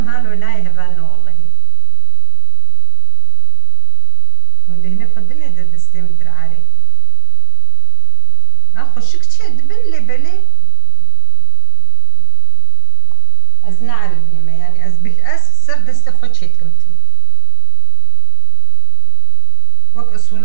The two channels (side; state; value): both; different; correlation 0.00